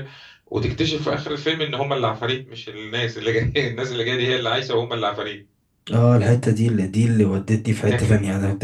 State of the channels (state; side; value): identical; both; correlation 1.00